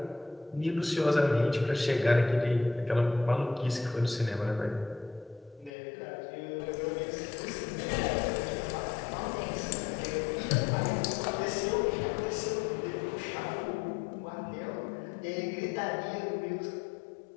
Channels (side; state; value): right; drops out; at 5.7 s